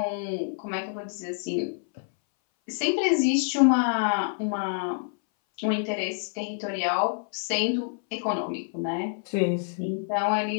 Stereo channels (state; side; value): silent; right; 59 dB below the other